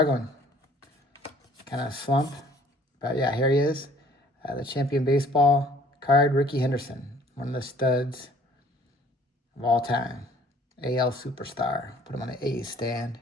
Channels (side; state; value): both; normal; correlation 0.55